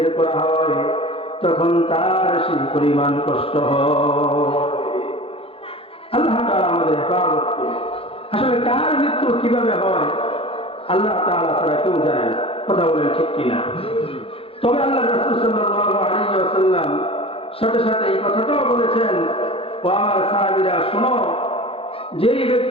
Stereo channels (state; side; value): late; right; 0.27 ms